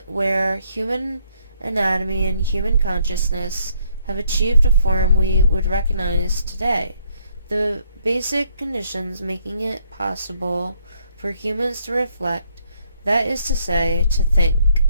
where human anatomy and human consciousness have achieved a form we would recognize today. The basic conditions making it possible for humans to reflect, that is to say, to think,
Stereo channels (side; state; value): both; inverted; correlation -0.68